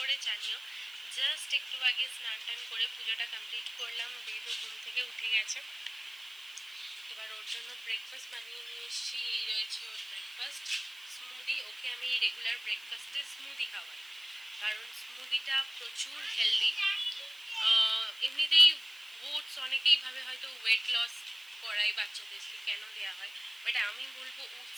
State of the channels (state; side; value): noise; right; hiss, 22 dB below the sound